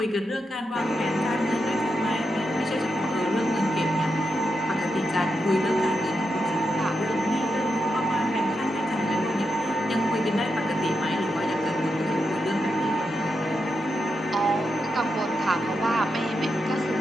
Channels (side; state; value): both; normal; correlation 0.86